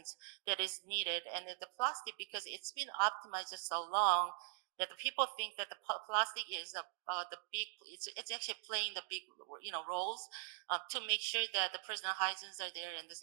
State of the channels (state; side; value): silent; left; digital silence